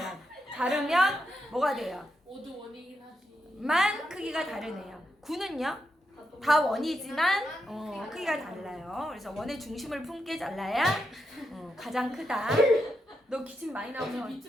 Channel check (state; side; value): normal; both; correlation 0.83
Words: 자르면 뭐가 돼요? 모두 원이긴 하지. 만 크기가 다르네요. 구는요? 다 원이지만 크기가 달라요. 그래서 원의 중심을 품게 잘라야 가장 크다. 너 기침 많이 나오면